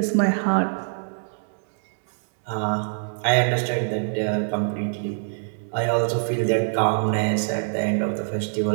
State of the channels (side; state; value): left; silent; digital silence